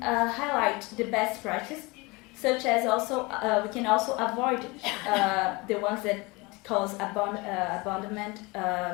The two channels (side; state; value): right; quieter; 25.2 dB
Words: highlight the best practice, such as also we can also avoid the ones that cause abandonment,